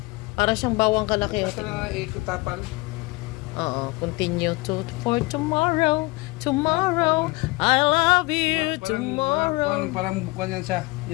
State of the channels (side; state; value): right; quieter; 23.9 dB